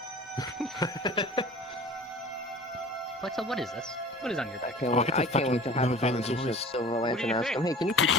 Lexa, what is this? What is on your back? I can't wait to have a conversation with Silver Lantern and ask him, hey, can you keep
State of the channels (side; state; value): both; normal; correlation 0.42